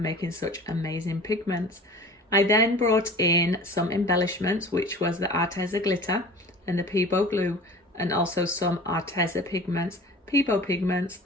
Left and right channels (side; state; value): both; normal; correlation 0.41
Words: such amazing pigments. I then brought in some embellishments, which was the Arteza glitter and the Peebo glue, and also some Arteza pigments, Peebo pigments,